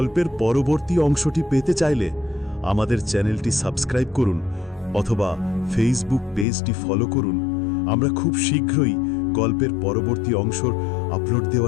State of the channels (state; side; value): drops out; right; at 6.5 s